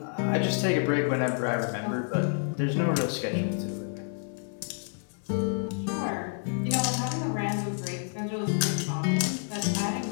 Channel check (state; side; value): silent; right; 59 dB below the other